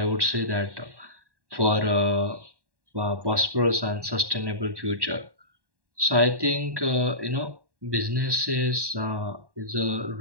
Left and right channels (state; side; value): late; left; 1.1 ms